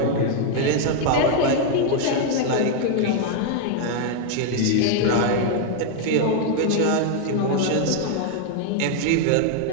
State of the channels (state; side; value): different; both; correlation 0.00